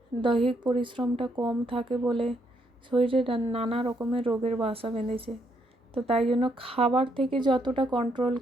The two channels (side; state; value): both; normal; correlation 0.74